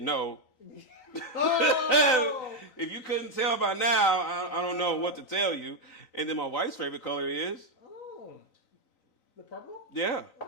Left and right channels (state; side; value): late; right; 3.9 ms